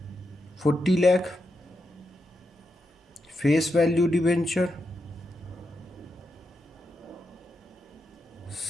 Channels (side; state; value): both; normal; correlation 0.85